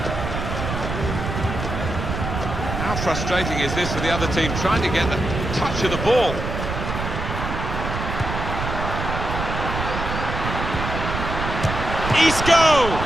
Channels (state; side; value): noise; right; rumble, 4 dB below the sound